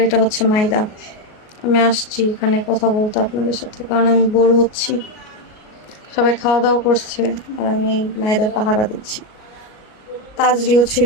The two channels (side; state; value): right; late; 38 ms